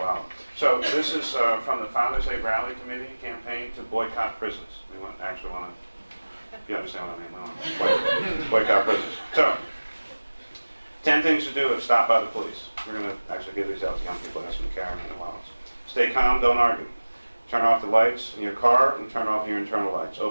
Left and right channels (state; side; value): inverted; both; correlation -1.00